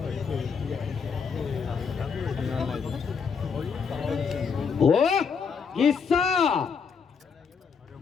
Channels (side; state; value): right; quieter; 5.9 dB